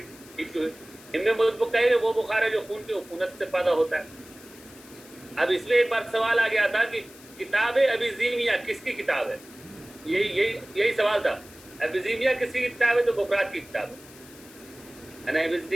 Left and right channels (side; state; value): left; noise; hiss, 21 dB below the sound